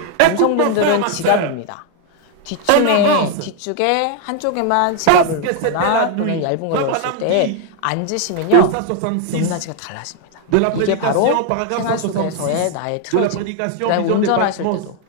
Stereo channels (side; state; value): both; different; correlation 0.01